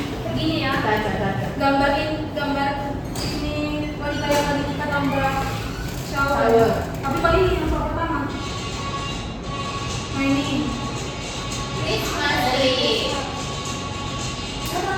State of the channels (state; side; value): identical; both; correlation 1.00